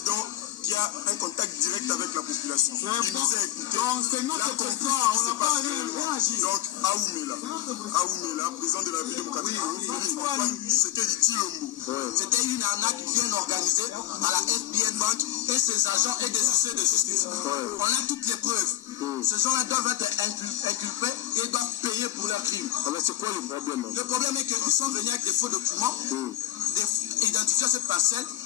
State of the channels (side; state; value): right; quieter; 13.7 dB